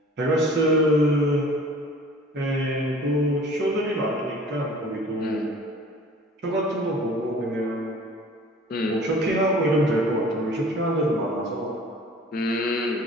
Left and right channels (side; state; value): both; normal; correlation 0.47